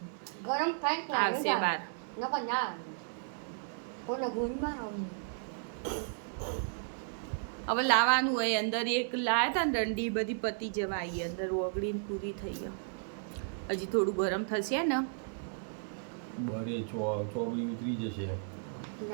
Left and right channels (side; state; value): left; silent; digital silence